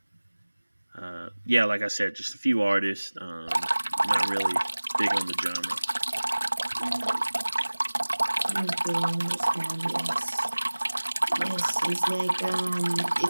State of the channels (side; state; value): both; inverted; correlation -1.00